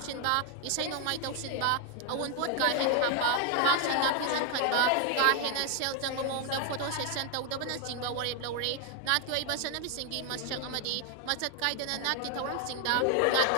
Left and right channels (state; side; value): different; both; correlation 0.00